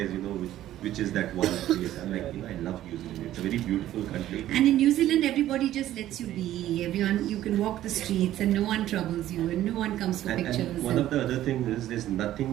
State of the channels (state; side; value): quieter; left; 13.3 dB